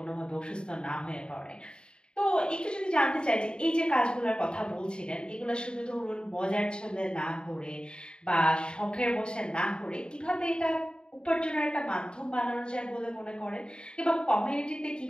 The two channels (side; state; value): right; late; 0.050 ms